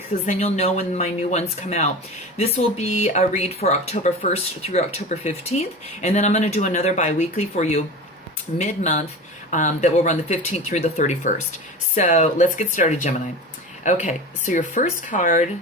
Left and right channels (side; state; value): both; normal; correlation 0.31